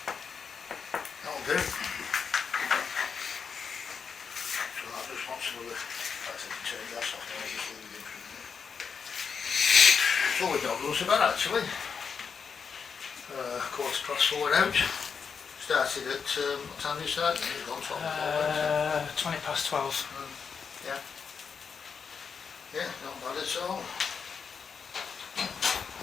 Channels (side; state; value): right; quieter; 6.1 dB